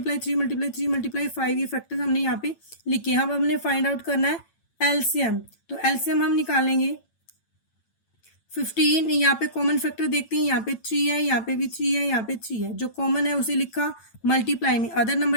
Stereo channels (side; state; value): right; late; 8.9 ms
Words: 3 × 3 × 5। ये फैक्टर्स हमने यहाँ पे लिखे। अब हमने फाइंड आउट करना है एलसीएम, तो एलसीएम हम निकालेंगे 15। यहाँ पे कॉमन फैक्टर देखते हैं, यहाँ पे 3 है, यहाँ पे भी 3 है, यहाँ पे 3 है, जो कॉमन है उसे लिखा मल्टीप्लाई में। अदर